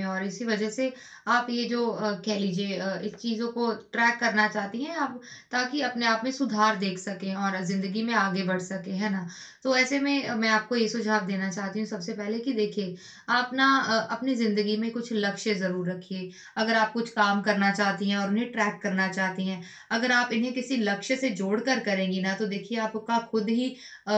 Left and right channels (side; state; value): both; identical; correlation 1.00